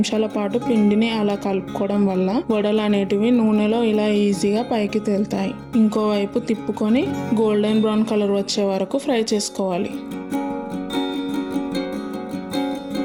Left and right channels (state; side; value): identical; both; correlation 1.00